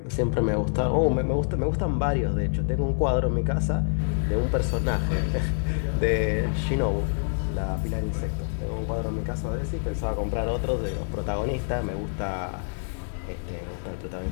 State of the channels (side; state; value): right; silent; digital silence